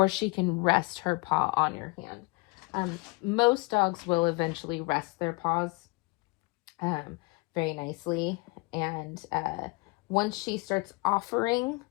she can rest her paw on your hand. Most dogs will eventually rest their paws very nicely. And once she starts offering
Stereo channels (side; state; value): right; quieter; 26.2 dB